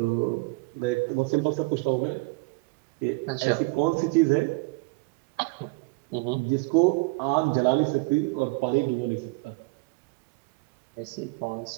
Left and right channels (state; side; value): quieter; left; 26.7 dB